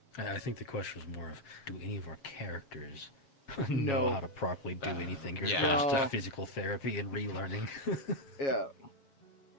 I think the question was more of, do any of our characters No. know how to properly do anything? Or is it yeah. just No. a physical therapy and relearning? Yeah.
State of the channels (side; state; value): right; late; 7.4 ms